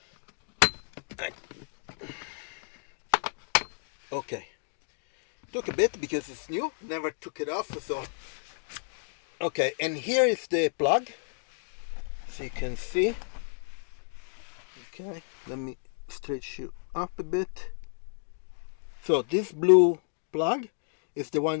Okay. Took a bit because it's new. Never took it off. So. Okay, and here is the plug. So you can see. Okay, let me stretch you up a bit. So this blue plug is the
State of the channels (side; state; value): right; silent; digital silence